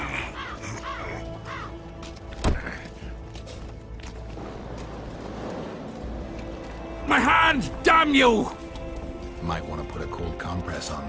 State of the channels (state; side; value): identical; both; correlation 1.00